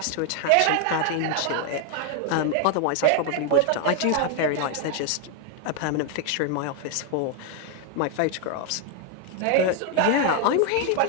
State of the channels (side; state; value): both; different; correlation 0.00